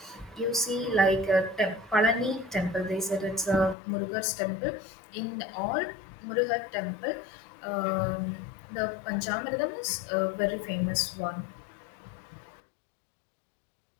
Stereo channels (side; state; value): right; drops out; at 3.8 s